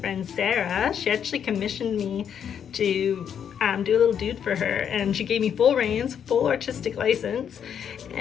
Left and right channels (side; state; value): right; quieter; 8.3 dB